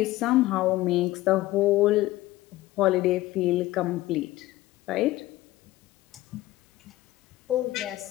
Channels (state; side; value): quieter; right; 17.1 dB